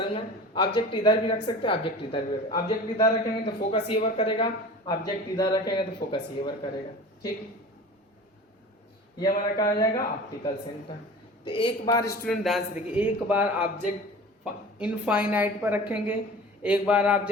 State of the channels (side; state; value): both; normal; correlation 0.38